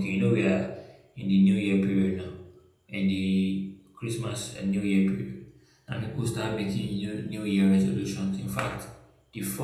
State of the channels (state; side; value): identical; both; correlation 1.00